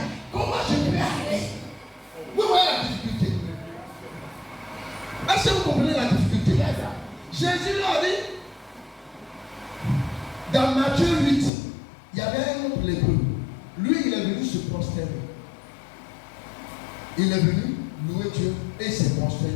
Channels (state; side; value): drops out; right; at 11.5 s